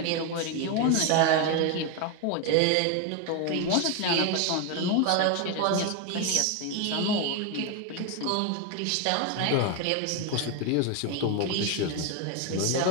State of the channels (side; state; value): both; different; correlation 0.01